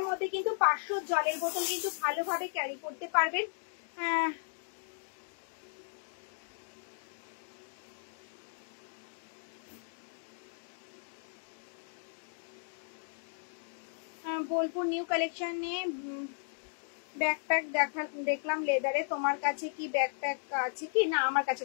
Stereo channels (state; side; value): silent; right; digital silence